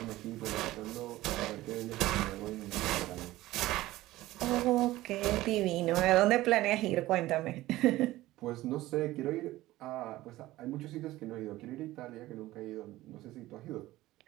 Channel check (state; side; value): quieter; left; 16.8 dB